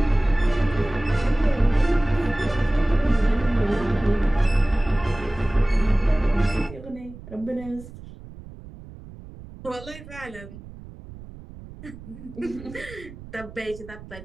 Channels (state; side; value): noise; right; rumble, 16 dB below the sound